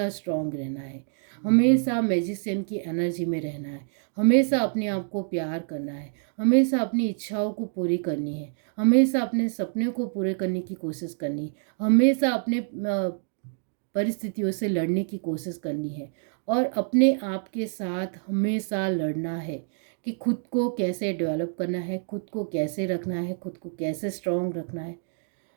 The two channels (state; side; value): silent; left; digital silence